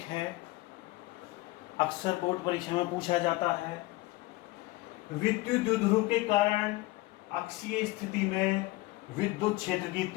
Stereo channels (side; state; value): right; quieter; 20.0 dB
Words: अक्सर बोर्ड परीक्षा में पूछा जाता है। विद्युत द्विध्रुव के कारण अक्षीय स्थिति में विद्युत क्षेत्र की